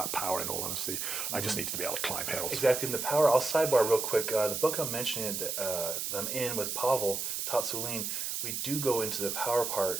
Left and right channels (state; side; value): noise; right; hiss, 2 dB below the sound